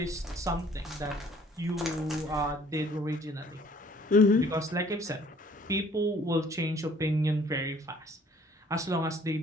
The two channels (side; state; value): both; normal; correlation 0.57